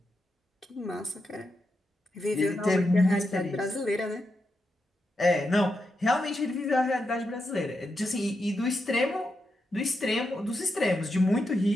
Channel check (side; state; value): both; normal; correlation 0.85